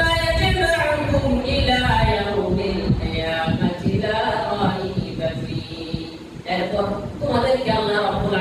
ইয়াজমাউকুম ইলা ইয়াউমিল কিয়ামাতি লা রাইবা ফীহি, এরপর তোমাদেরকে আল্লাহ রাব্বুল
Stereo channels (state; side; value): identical; both; correlation 1.00